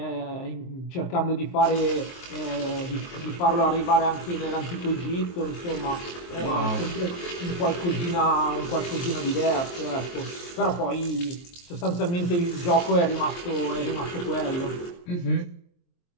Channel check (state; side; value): late; right; 23 ms